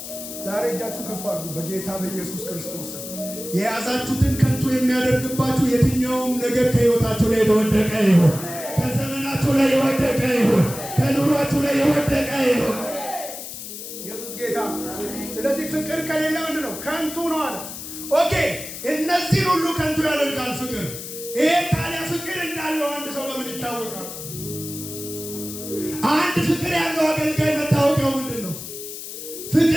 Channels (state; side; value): noise; left; hiss, 10 dB below the sound